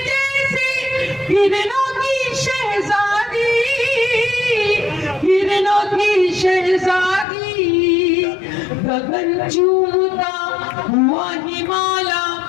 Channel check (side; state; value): right; drops out; at 7.2 s